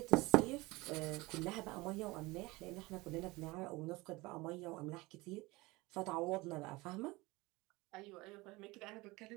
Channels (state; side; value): quieter; left; 22.1 dB